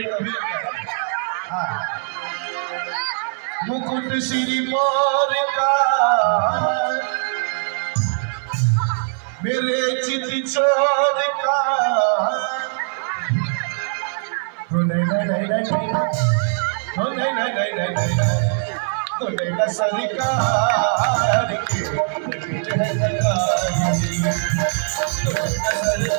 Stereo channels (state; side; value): silent; left; 58 dB below the other